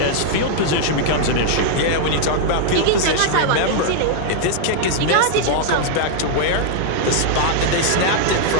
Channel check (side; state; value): both; different; correlation 0.00